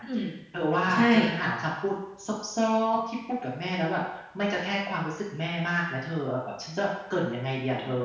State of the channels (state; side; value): identical; both; correlation 1.00